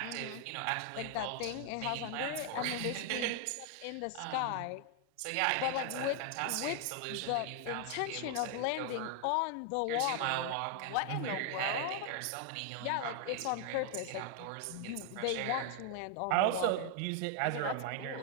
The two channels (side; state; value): both; different; correlation 0.00